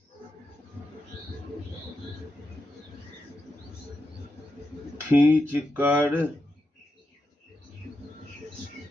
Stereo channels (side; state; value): both; normal; correlation 0.87